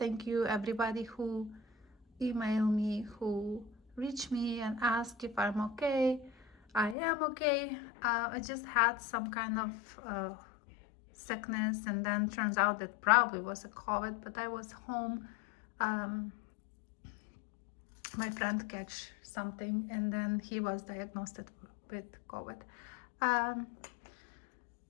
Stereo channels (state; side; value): drops out; right; at 7.0 s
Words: you everybody who emailed me, who reached me and asked if I'm okay. I am okay. I just had some kind of sickness, and then turns out that probably was a COVID, but I was home. Um, my friend catch something, and then he was diagnosed with COVID. Um,